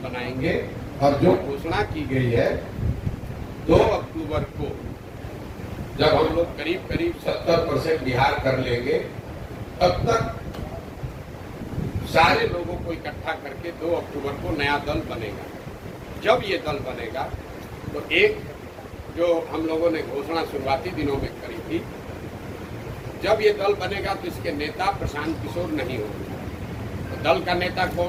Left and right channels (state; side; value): identical; both; correlation 1.00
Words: बनाएंगे। और जो घोषणा की गई है 2 अक्टूबर को, जब हम लोग करीब 70% बिहार कर लेंगे, तब तक सारे लोगों को इकट्ठा करके 2 अक्टूबर को नया दल बनेगा। जब ये दल बनेगा तो एक जो हम लोगों ने घोषणा शुरुआती दिनों में करी थी, जब ये दल बनेगा तो इसके नेता प्रशांत किशोर नहीं होंगे। तो दल का नेता